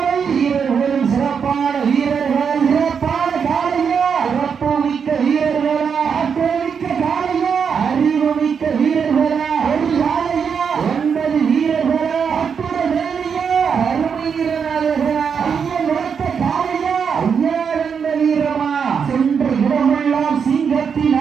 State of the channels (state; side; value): quieter; left; 6.6 dB